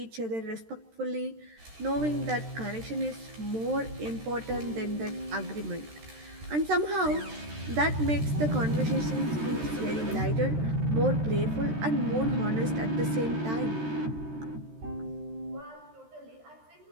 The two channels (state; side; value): late; left; 13 ms